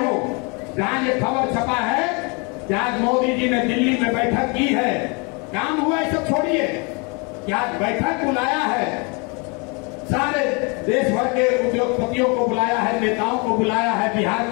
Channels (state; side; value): quieter; right; 31.7 dB